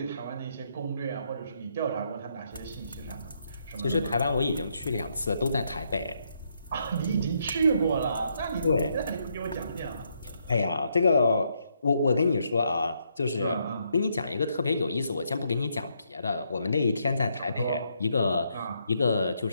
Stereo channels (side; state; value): both; inverted; correlation -0.76